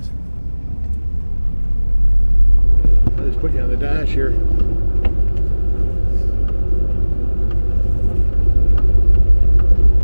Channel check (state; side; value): inverted; both; correlation -1.00